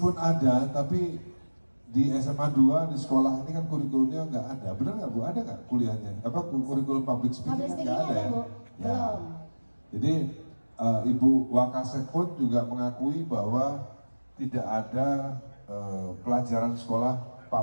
ada, tapi di SMA 2 di sekolah ini kan kurikulumnya nggak ada. Benar nggak Bu? Ada nggak kuliahnya? Kurikulum public speaking nggak ada ya? Ya. Jadi Ibu Wakasek pun juga mengakui bahwa tidak ada pelajaran sekolah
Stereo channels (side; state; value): both; inverted; correlation -1.00